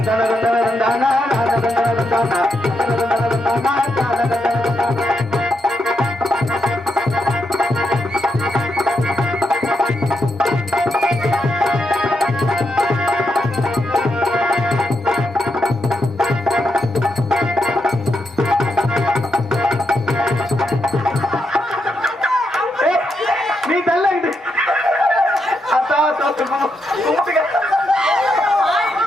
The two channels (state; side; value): normal; both; correlation 0.82